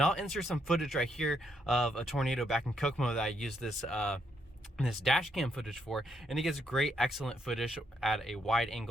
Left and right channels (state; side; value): normal; both; correlation 0.77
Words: I'll insert some footage right here of a tornado back in Kokomo that I used this dash cam footage for, and it gets great, excellent footage at a wide